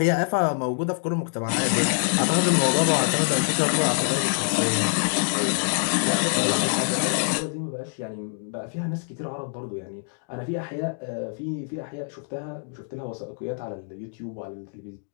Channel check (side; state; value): right; silent; digital silence